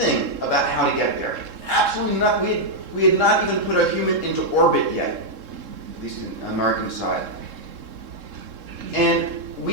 about how to get there. Absolutely nothing. We had not even put a human into orbit yet, at least in the American side. And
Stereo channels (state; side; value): late; left; 3.7 ms